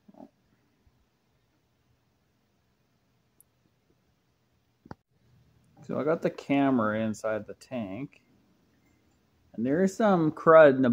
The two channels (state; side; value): identical; both; correlation 1.00